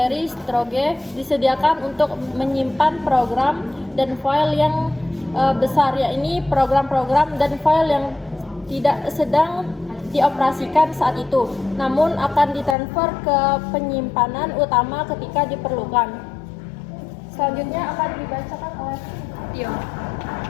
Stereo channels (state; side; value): drops out; right; at 12.8 s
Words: storage disediakan untuk menyimpan program dan file yang besar, yakni program-program dan file yang tidak sedang dioperasikan saat itu, namun akan ditransfer ke penyimpanan utama ketika diperlukan. Selanjutnya akan dibacakan oleh Tio.